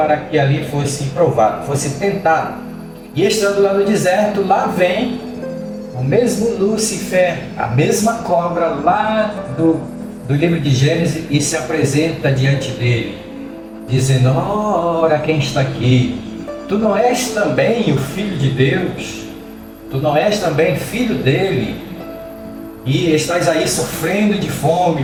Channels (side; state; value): both; identical; correlation 1.00